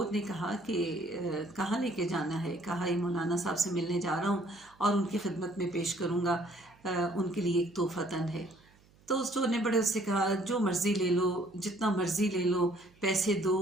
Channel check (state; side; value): noise; right; hum, 29 dB below the sound